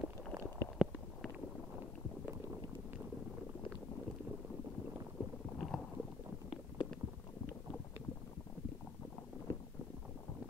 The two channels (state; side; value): quieter; right; 3.4 dB